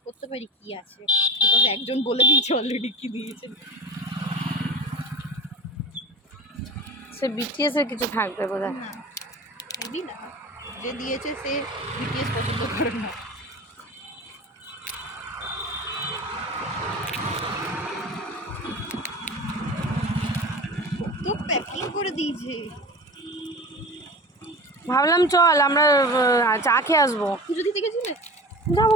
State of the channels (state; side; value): normal; both; correlation 0.33